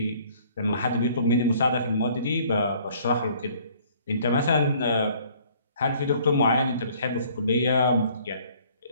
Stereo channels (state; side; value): inverted; both; correlation -0.58